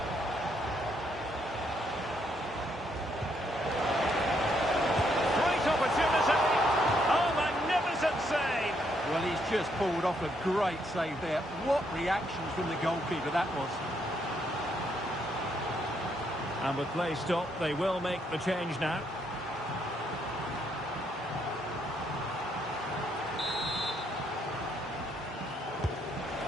Great opportunity. Oh, magnificent save. Well, he's just pulled off a great save there. What reaction from the goalkeeper that was. And with play stopped, they will make the change now.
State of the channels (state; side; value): normal; both; correlation 0.74